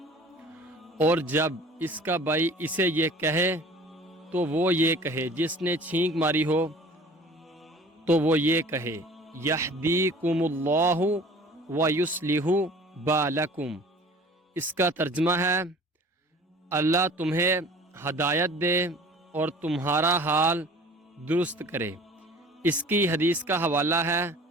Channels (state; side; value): normal; both; correlation 0.46